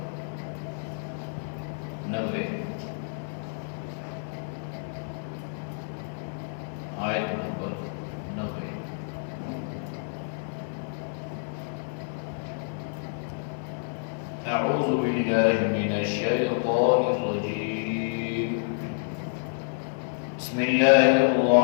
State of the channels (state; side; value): silent; right; 59 dB below the other